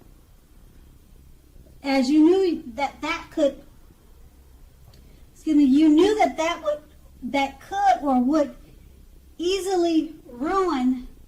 as you knew that could or would easily ruin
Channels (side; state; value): both; identical; correlation 1.00